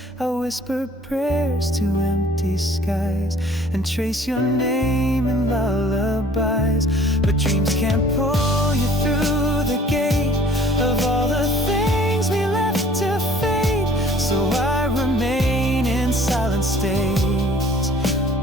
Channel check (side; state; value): both; normal; correlation 0.53